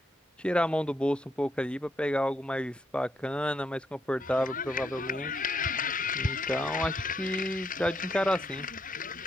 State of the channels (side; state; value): both; normal; correlation 0.77